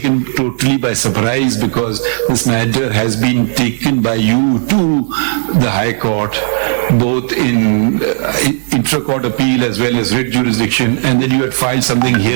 totally by surprise, because this matter has been taken by you to the High Court, both in intra-court appeal as well as writ jurisdiction, and then you had filed something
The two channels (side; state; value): left; silent; digital silence